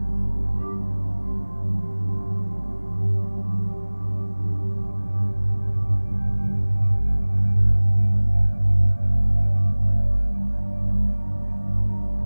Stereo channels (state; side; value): inverted; both; correlation -1.00